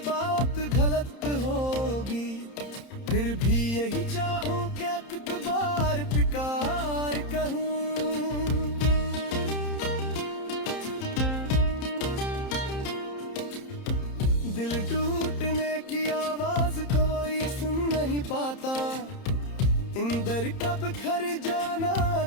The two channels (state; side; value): late; right; 30 ms